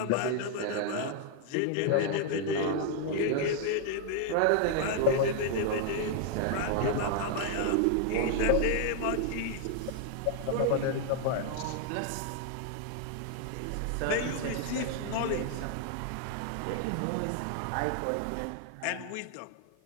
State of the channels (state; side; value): different; both; correlation 0.00